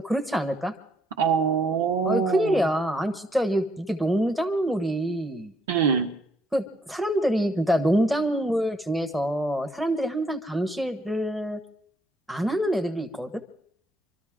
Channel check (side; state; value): both; normal; correlation 0.71